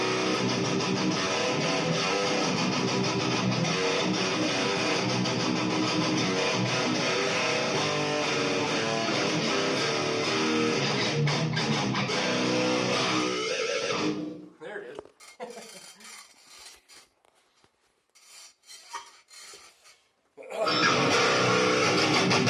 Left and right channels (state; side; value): identical; both; correlation 1.00